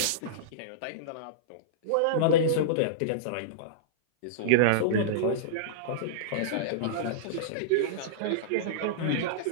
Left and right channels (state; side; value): different; both; correlation -0.03